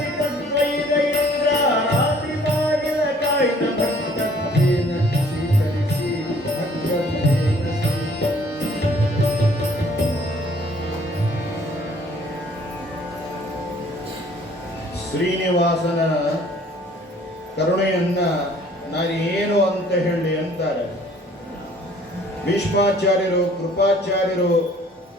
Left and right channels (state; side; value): normal; both; correlation 0.57